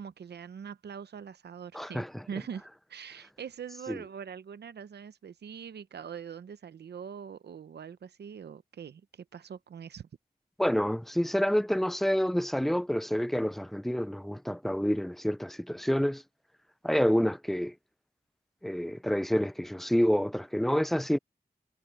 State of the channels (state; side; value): normal; both; correlation 0.98